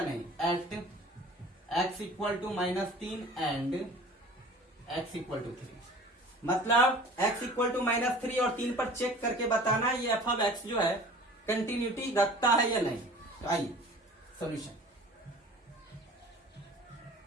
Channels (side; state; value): both; normal; correlation 0.44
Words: नहीं, at x equal to minus 3 and x equal to 3, मतलब x इक्वल टू माइनस 3 और 3 पर चेक करके बताना ये एफ ऑफ x जो है कंटिन्यूटी रखता है या नहीं। तो आइए सॉल्यूशन,